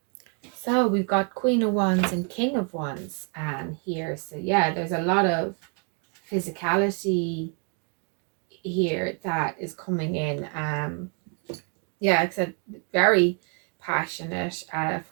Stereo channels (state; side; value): quieter; left; 38.9 dB